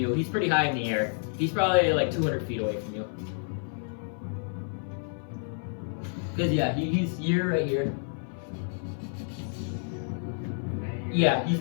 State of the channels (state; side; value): silent; right; 57 dB below the other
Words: He's pretty high in the air. He's probably like 200 feet away from you. Cause yeah, you're right here. Yeah, he's